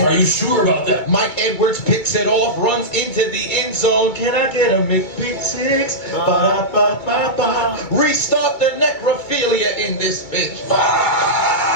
Are you sure about that? Mike Edwards picks it off, runs into the end zone. Can I get a McPick-6? Ba-da-ba-ba-ba. Restart the necrophilia in this bitch.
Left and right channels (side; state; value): right; late; 2.2 ms